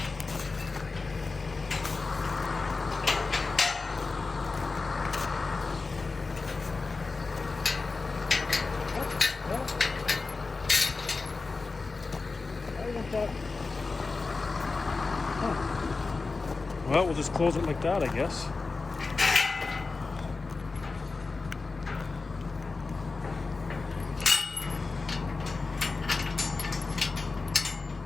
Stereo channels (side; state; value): right; quieter; 4.0 dB